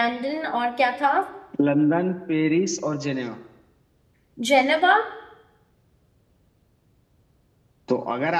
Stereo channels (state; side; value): identical; both; correlation 1.00